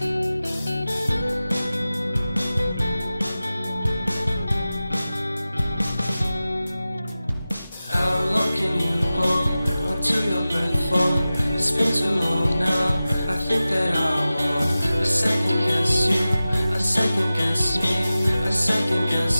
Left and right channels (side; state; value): both; inverted; correlation -0.96